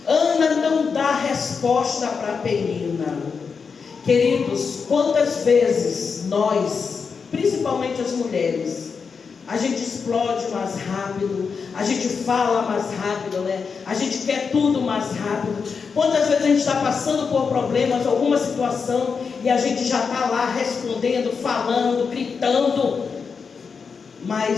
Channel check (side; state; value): right; quieter; 5.6 dB